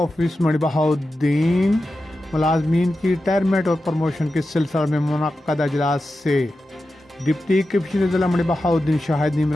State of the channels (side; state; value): both; normal; correlation 0.92